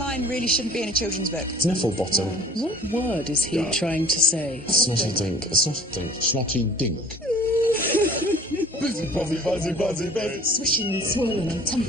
really shouldn't be in a children's book. Sniffle bottom. What word is he trying to say? Snotty dink. Snotty dink. Snotty dink. Buzzy, buzzy, buzzy, buzzy, buzzy. Swishing and swirling and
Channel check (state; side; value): normal; both; correlation 0.48